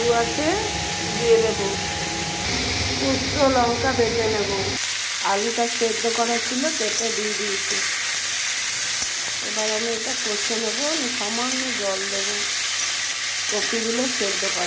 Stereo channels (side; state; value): both; identical; correlation 1.00